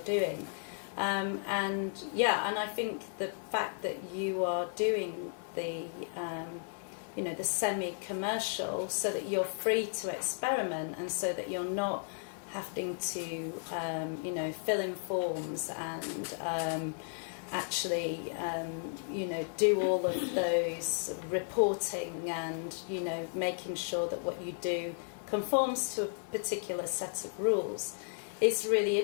And I think the fact that you are doing the, the semi-commercial, so that you're free to experiment, and so that you're not having to, fill in forms and actually, do all of those reporting and, making sure that what you do conforms to a particular set of rules is really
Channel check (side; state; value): right; silent; 55 dB below the other